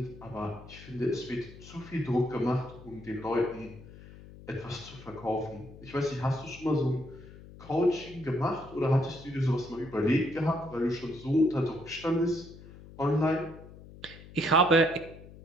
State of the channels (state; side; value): noise; left; hum, 18 dB below the sound